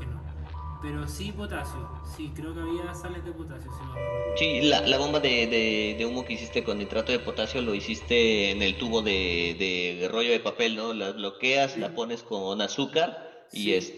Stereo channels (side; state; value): both; identical; correlation 1.00